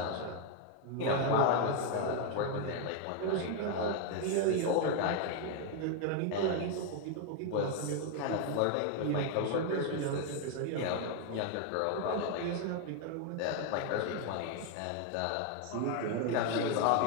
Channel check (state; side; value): different; both; correlation 0.01